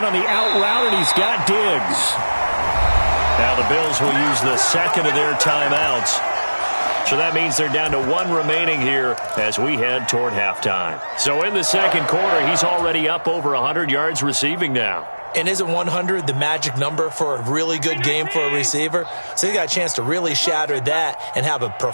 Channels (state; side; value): inverted; both; correlation -1.00